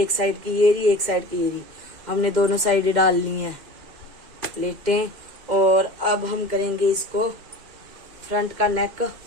साइड की ये रही, एक साइड की ये रही, हमने दोनों साइड डाल ली हैं प्लेटें। और अब हम करेंगे इसको फ्रंट का नेक,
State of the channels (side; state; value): left; late; 2.1 ms